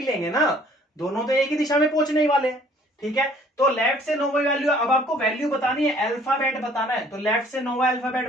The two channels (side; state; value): both; normal; correlation 0.57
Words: लेंगे ना, दोनों तो एक ही दिशा में पहुंचने ही वाले हैं, ठीक है। तो लेफ्ट से 9वां वैल्यू, अब आपको वैल्यू बतानी है, अल्फाबेट बताना है, तो लेफ्ट से 9वां